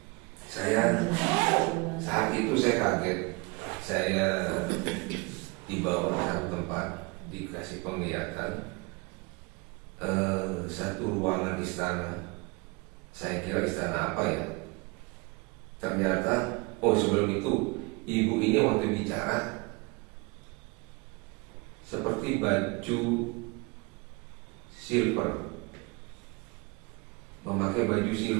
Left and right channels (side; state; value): left; quieter; 27.6 dB